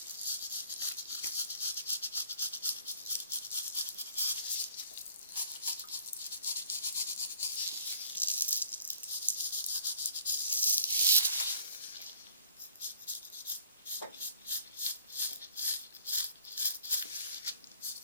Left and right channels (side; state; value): both; inverted; correlation -0.55